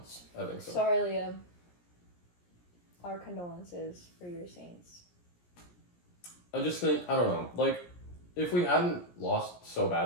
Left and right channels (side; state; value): right; late; 17 ms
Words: I think so. Sorry, Liam. Our condolences for your Saints. I just think, I don't know, like, if we hadn't lost so